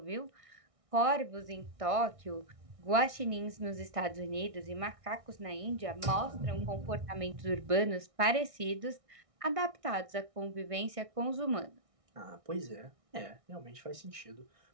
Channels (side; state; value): left; late; 1.6 ms